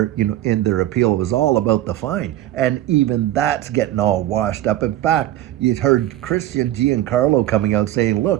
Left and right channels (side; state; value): left; quieter; 13.8 dB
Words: in their appeal. It was all about the fine. And even that's getting all washed up. In fact, you heard Christian Giancarlo coming out saying,